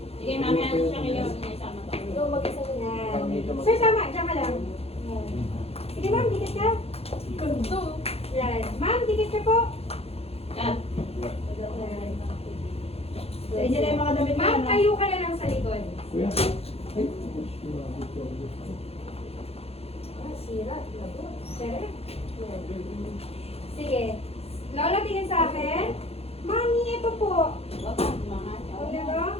Sige, mami, ano siya kayo? Sama ko. Go, mag-isa ko na. Sir, tama. Diyan ka lang. Yan. Sige, ma'am, dikit ka. Yan. Ma'am, dikit ka po. Cut. Yan. Sa inyo na yung mga damit na Ma'am, ano. tayo ka na lang sa likod. Kuya. Ah, sira. Lago. Sir. Yan. Sige. Lolo, tingin sa akin. Mami, ito po. Huwag na to?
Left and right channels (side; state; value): right; late; 0.29 ms